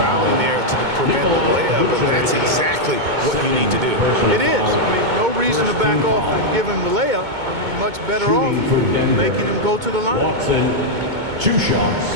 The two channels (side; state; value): left; late; 2.2 ms